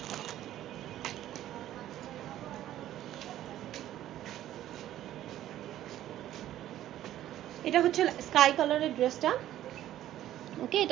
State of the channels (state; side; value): quieter; left; 12.8 dB